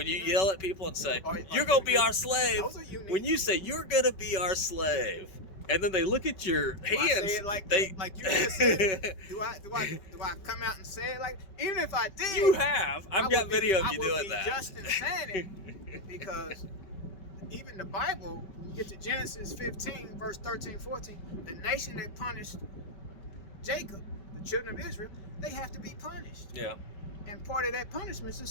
people and say you're going to be our slave, when you say you're going to be our slave, and then they look at your hands. I say it like you just said? Do I come out and say it like? Even if I did, you have. I've got video of you doing that. Just in saying it, because even the Bible, when you get to Genesis 15, verse 13, 14, the nation that punished Jacob, the children of Israel, they have to be punished. Yeah. And part of that punishment is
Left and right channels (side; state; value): right; late; 5.2 ms